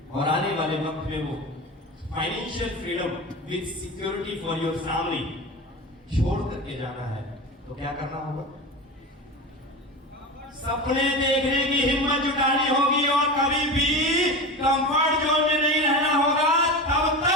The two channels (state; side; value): normal; both; correlation 0.27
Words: और आने वाले वक्त में वो financial freedom with security for your family छोड़ करके जाना है, तो क्या करना होगा? सपने देखने की हिम्मत जुटानी होगी और कभी भी कंफर्ट जोन में नहीं रहना होगा, तब